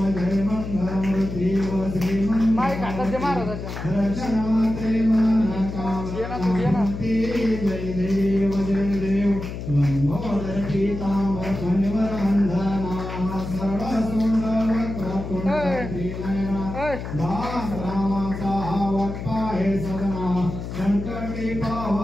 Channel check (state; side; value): noise; left; hum, 7 dB below the sound